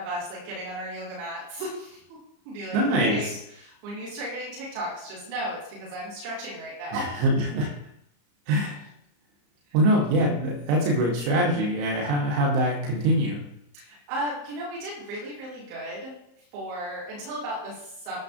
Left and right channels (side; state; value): left; late; 34 ms